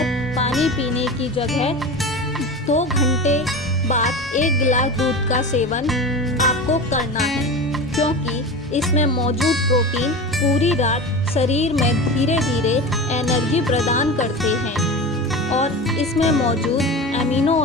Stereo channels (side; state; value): both; normal; correlation 0.29